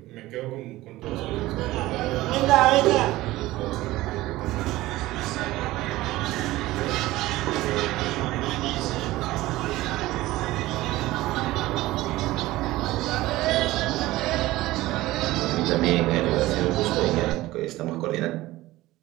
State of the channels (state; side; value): quieter; left; 17.6 dB